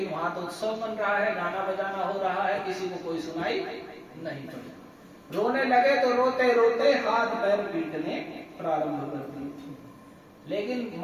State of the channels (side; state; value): both; identical; correlation 1.00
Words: वहां तो उत्सव बन रहा है, गाना बजाना हो रहा है, किसी को कोई सुनाई नहीं पड़ी। रोने लगे तो रोते रोते हाथ पैर पीटने प्रारंभ कर दिए। लेकिन